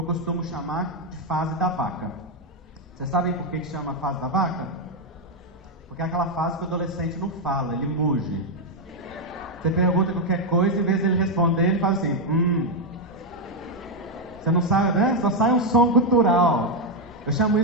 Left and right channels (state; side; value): normal; both; correlation 0.02